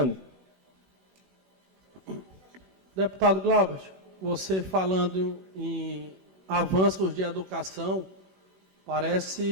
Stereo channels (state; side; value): late; left; 16 ms